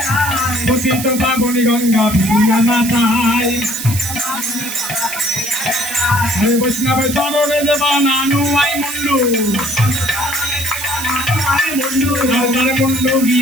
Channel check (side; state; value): right; noise; hiss, 7 dB below the sound